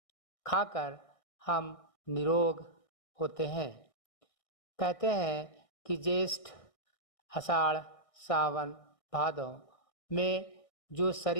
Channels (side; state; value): right; late; 1.6 ms